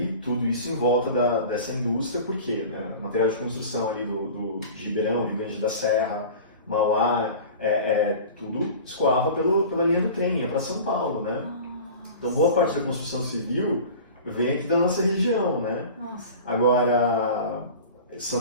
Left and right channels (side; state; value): both; inverted; correlation -0.38